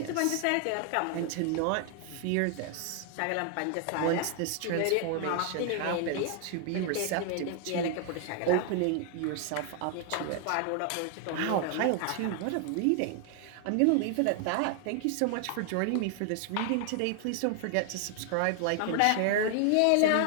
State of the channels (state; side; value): different; both; correlation 0.00